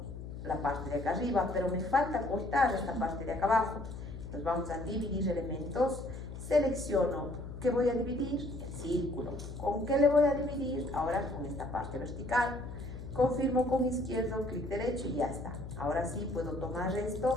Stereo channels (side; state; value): left; noise; hum, 10 dB below the sound